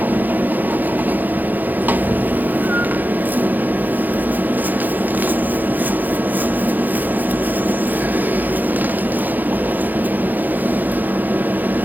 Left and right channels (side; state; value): left; late; 0.085 ms